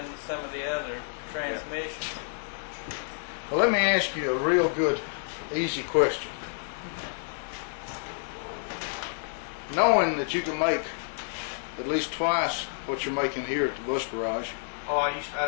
some of the other transmissions. Well, let me ask you a real good, easy question. Knowing that you can make at least twice what you're making here at the bus garage. Oh, I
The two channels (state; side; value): silent; right; 58 dB below the other